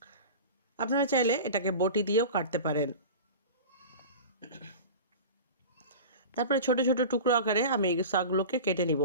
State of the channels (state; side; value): inverted; both; correlation -0.33